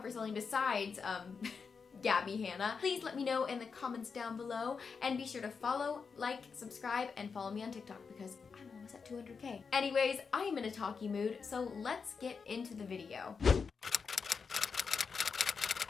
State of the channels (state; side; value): quieter; right; 5.5 dB